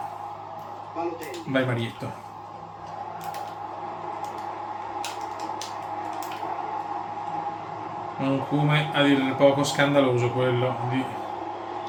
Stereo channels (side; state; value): both; identical; correlation 1.00